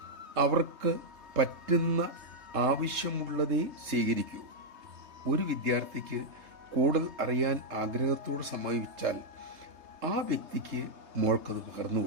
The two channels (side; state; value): left; late; 3.2 ms